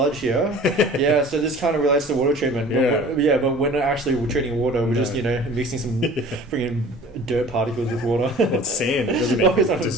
here. So this kind of relates to water treatment. But when actually we're treating water, we're just mixing some freaking dirt particles with water. Well, it's sand. It doesn't even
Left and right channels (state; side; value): normal; both; correlation 0.45